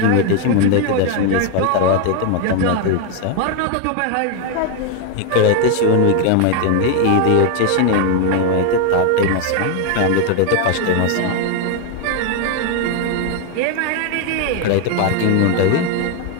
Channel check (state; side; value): different; both; correlation 0.01